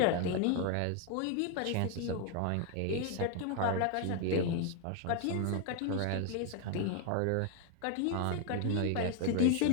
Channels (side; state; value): both; different; correlation 0.01